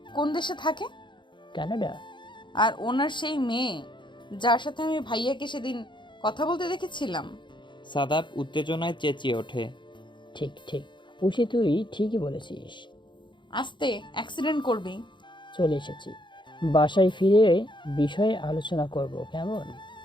কোন দেশে থাকে, কানাডা। আর ওনার সেই মেয়ে যার সাথে আমি ভাইয়াকে সেদিন কথা বলতে দেখেছিলাম। সাদাব উত্তেজনায় চেঁচিয়ে ওঠে। ঠিক ঠিক উষি, তুই ঠিকই বলেছিস। আস্তে, অ্যাক্সিডেন্ট করবি। চলে এসেছি, বাসায় ফিরে বিষয়ে আলোচনা করব, কেমন?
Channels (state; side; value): late; right; 0.23 ms